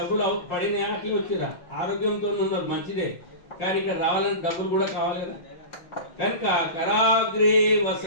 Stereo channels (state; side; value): late; right; 5.6 ms